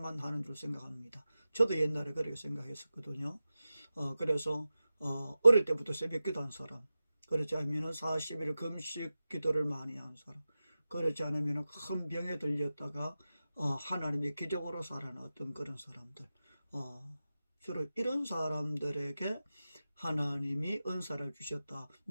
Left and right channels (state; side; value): inverted; both; correlation -0.93